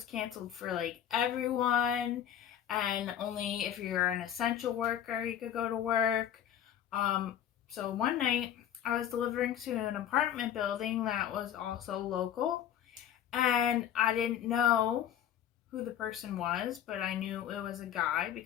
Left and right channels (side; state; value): right; quieter; 10.2 dB